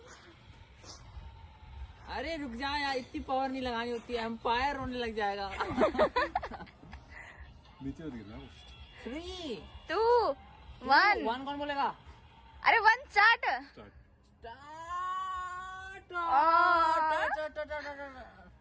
अरे रुक जाओ यार, इतनी पावर नहीं लगानी होती है, एम्पायर होने लग जाएगा। नीचे मत गिरना। 3 2 1 1 कौन बोलेगा? अरे 1 स्टार्ट।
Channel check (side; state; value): both; identical; correlation 1.00